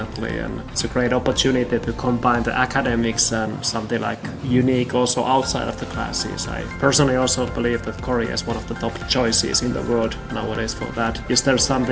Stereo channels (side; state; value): both; identical; correlation 1.00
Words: And it's a great opportunity to combine the academics and something like unique also outside of the classes. I personally also believe that Korea is one of the top choices in the world nowadays for that. Is there